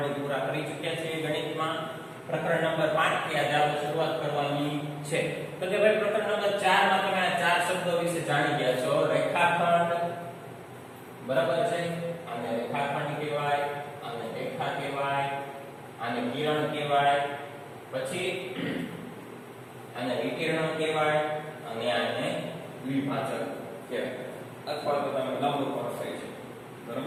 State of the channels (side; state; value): both; identical; correlation 1.00